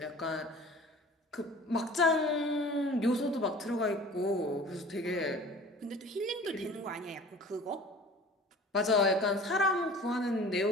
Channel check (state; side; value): normal; both; correlation 0.44